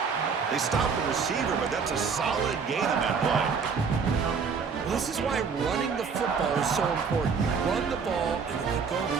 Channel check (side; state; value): left; quieter; 5.7 dB